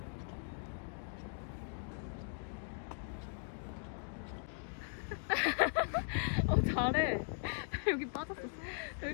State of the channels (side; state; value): right; silent; digital silence